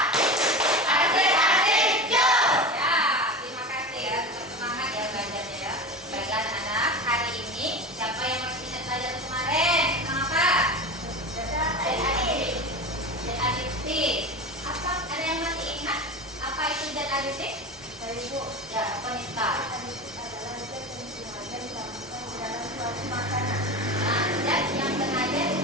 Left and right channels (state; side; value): normal; both; correlation 0.27